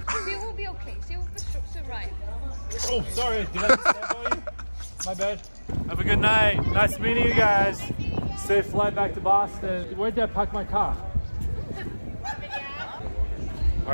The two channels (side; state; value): both; inverted; correlation -1.00